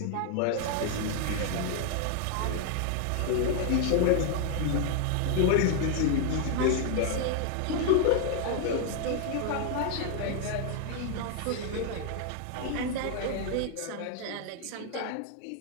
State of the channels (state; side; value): different; both; correlation 0.00